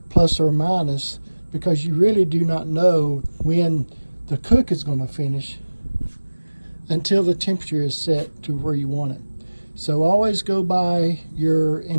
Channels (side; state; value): both; inverted; correlation -1.00